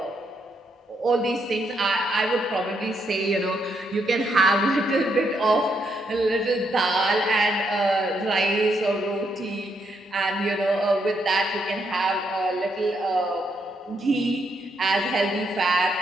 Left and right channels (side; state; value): both; normal; correlation 0.77